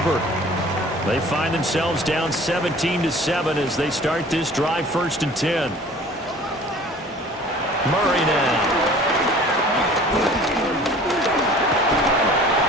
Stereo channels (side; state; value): both; normal; correlation 0.47